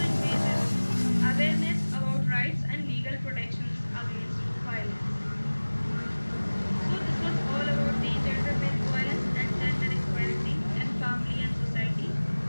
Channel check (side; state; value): both; inverted; correlation -1.00